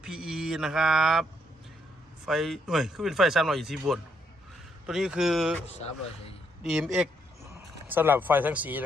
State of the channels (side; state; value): both; normal; correlation 0.73